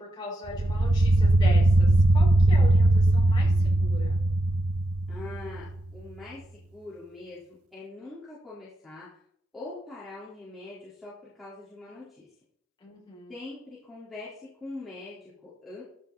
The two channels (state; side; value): normal; both; correlation 0.87